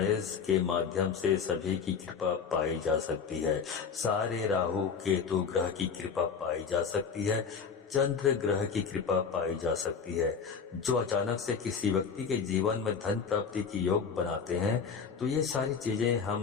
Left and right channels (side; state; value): right; quieter; 6.1 dB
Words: के माध्यम से सभी की कृपा पाई जा सकती है। सारे राहु केतु ग्रह की कृपा पाई जा सकती है, चंद्र ग्रह की कृपा पाई जा सकती है, जो अचानक से किसी व्यक्ति के जीवन में धन प्राप्ति की योग बनाते हैं। तो ये सारी चीजें